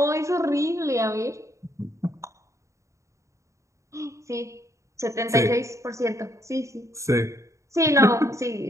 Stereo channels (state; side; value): late; left; 0.15 ms